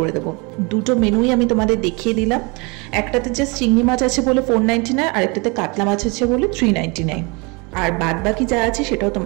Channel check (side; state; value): left; quieter; 29.0 dB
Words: দেবো। দুটো মেনুই আমি তোমাদের দেখিয়ে দিলাম। একটাতে জাস্ট চিংড়ি মাছ আছে বলে 499, আর একটাতে কাতলা মাছ আছে বলে 399, আর বাদ বাকি যা আছে সেটাও